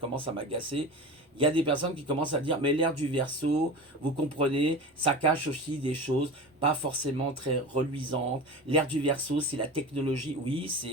à m'agacer. Il y a des personnes qui commencent à dire, mais l'ère du Verseau, vous comprenez, ça cache aussi des choses pas forcément très reluisantes. L'ère du Verseau, c'est la technologie. Oui,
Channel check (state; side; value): normal; both; correlation 0.31